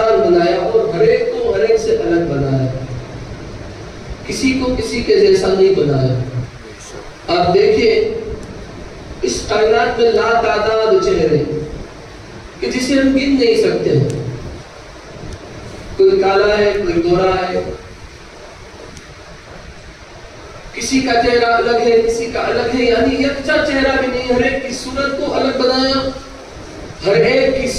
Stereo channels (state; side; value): identical; both; correlation 1.00